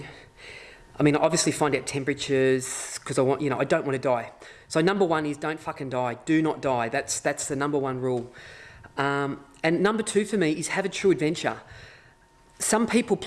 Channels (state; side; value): identical; both; correlation 1.00